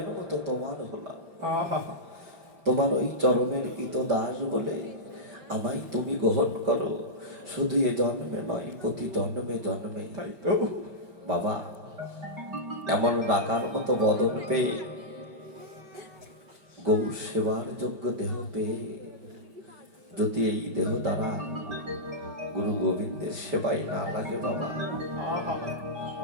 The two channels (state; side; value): late; left; 5.1 ms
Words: মতো তোমার হলাম, তোমার ওই চরণের কৃত দাস বলে আমায় তুমি গ্রহণ করো। শুধু এ জন্মে নয়, প্রতি জন্মে জন্মে। তাই তো বাবা এমন ডাকার মতো বদন পেয়ে, গৌ সেবার যোগ্য দেহ পেয়ে যদি এই দেহ দ্বারা গুরু গোবিন্দের সেবাই না লাগে বাবা,